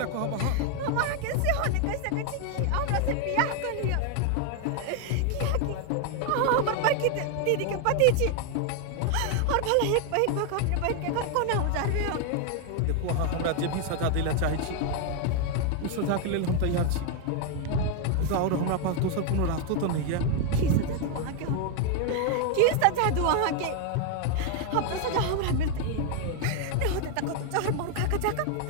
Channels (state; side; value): different; both; correlation 0.01